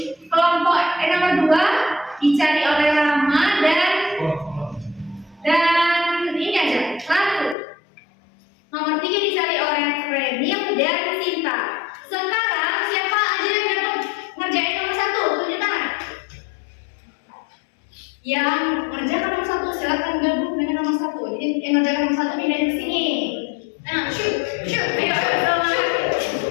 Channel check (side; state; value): right; drops out; at 7.6 s